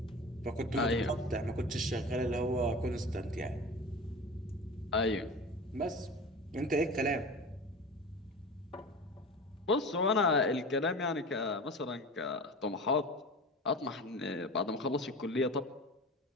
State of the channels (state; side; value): normal; both; correlation 0.33